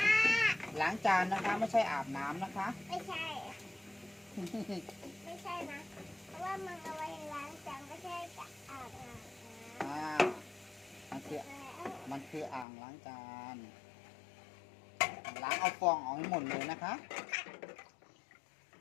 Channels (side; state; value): right; drops out; at 12.7 s